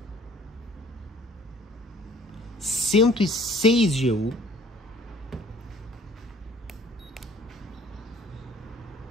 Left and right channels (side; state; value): both; normal; correlation 0.55